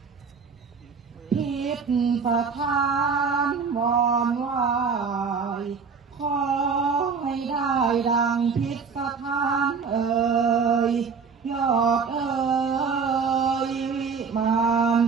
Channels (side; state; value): left; quieter; 5.5 dB